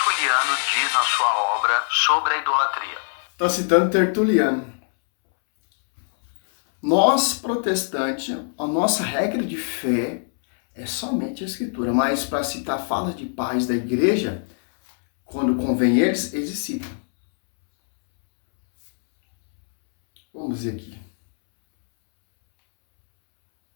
diz na sua obra sobre a idolatria. Está citando Tertuliano. Nós, protestantes, a nossa regra de fé é somente a Escritura, mas para citar falas de pais da igreja, quando convém eles citam. Vamos ver aqui.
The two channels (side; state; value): right; silent; 64 dB below the other